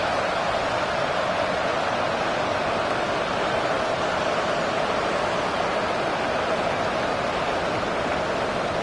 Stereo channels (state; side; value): identical; both; correlation 1.00